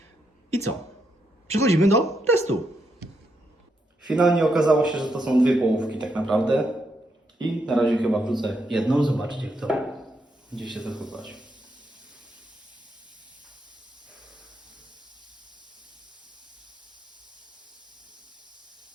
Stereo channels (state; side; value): normal; both; correlation 0.80